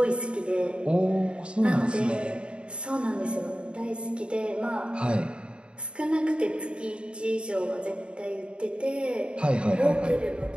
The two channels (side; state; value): left; late; 0.055 ms